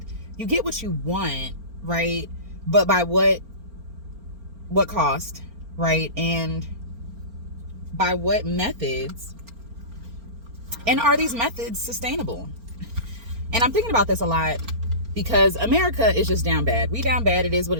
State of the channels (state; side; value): late; left; 4.4 ms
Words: You get what you want, right? But by what cost, right? And by what methods? And are these methods sustainable? And I'm thinking about this a lot because America is just down bad. We down bad. It is what